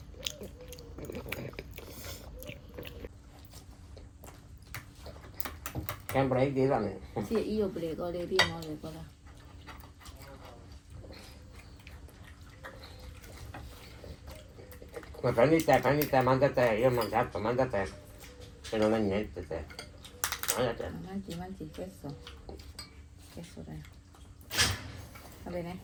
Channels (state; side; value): identical; both; correlation 1.00